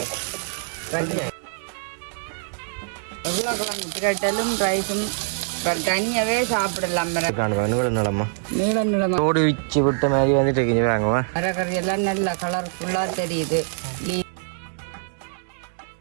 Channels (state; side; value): silent; left; 61 dB below the other